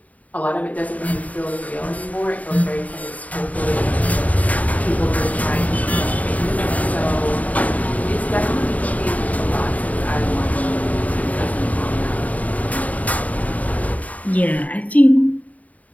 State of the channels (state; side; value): late; right; 0.072 ms